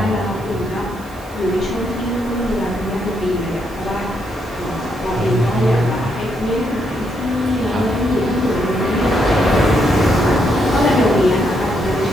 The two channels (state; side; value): noise; right; hiss, 24 dB below the sound